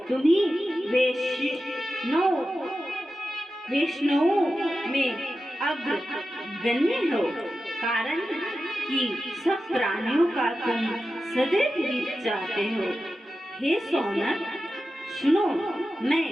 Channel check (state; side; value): normal; both; correlation 0.92